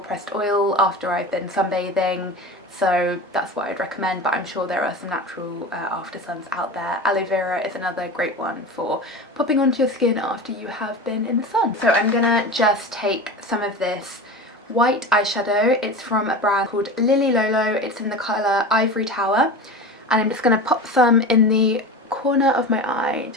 pressed oil after I've been sunbathing, so that's what I'd recommend, but I'm sure there are some natural after suns out there. Aloe vera is another great one for popping onto your skin after you have been in the sun. So I'm gonna just take some of this white eyeshadow. It's from a brand called Lily Lolo. It's in the colour Ivory Tower, and I'm just gonna pop some in the corner of my eye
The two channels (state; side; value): normal; both; correlation 0.29